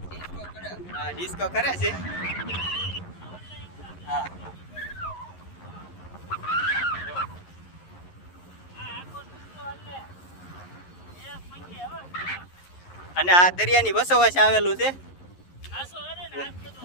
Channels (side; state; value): right; late; 11 ms